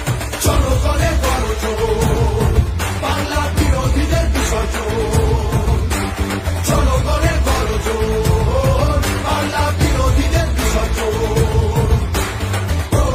জনগণের গর্জন, বাংলা বিরোধীদের বিসর্জন। জনগণের গর্জন, বাংলা বিরোধীদের বিসর্জন।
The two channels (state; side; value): identical; both; correlation 1.00